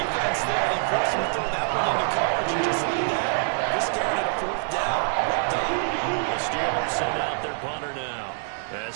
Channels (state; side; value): silent; left; 59 dB below the other